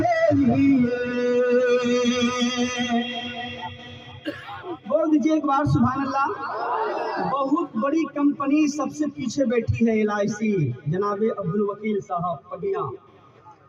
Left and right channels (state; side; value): identical; both; correlation 1.00